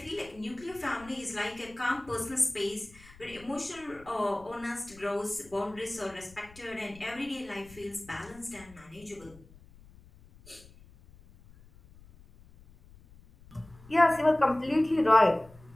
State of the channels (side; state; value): left; noise; rumble, 23 dB below the sound